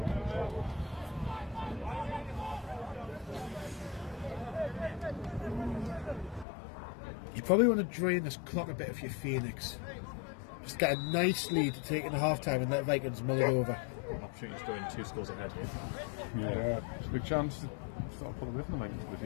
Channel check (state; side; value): drops out; right; at 6.5 s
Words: probably want to drain this clock a bit if you're Phoenix. Just get a nice lead to take in the half time and let Vikings mull it over. Opportunity to go in 2 scores ahead here. Yeah, it's a big chance to sort of pull away from the Vikings if you